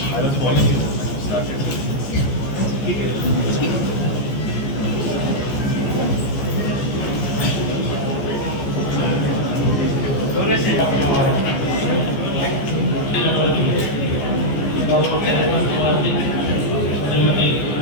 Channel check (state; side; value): late; right; 14 ms